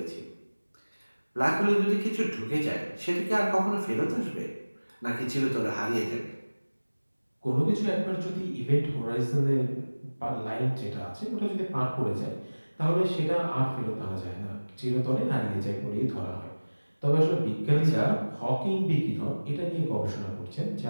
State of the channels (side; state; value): both; inverted; correlation -1.00